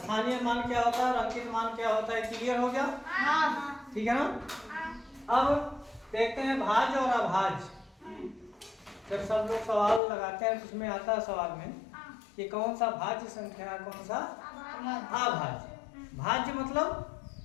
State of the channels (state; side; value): drops out; right; at 10.0 s